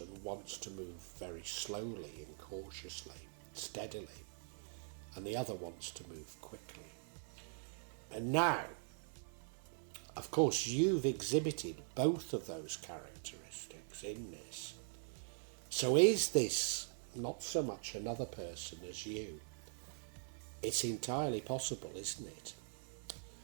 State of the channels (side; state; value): left; silent; digital silence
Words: and wants to move very slowly and cautiously, steadily, and the other wants to move quickly. And now, of course, you've exhibited both of those characteristics in this. So is this not so much another person as you? It's entirely possible, isn't it,